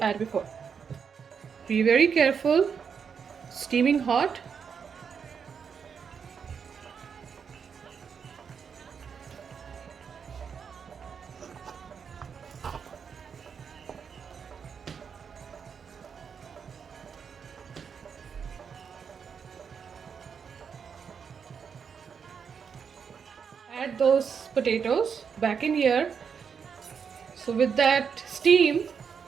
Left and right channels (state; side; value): quieter; left; 6.6 dB